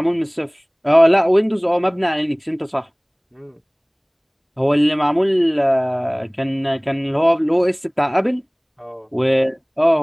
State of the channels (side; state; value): both; identical; correlation 1.00